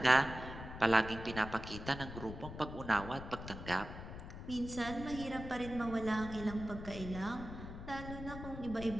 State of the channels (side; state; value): left; noise; rumble, 10 dB below the sound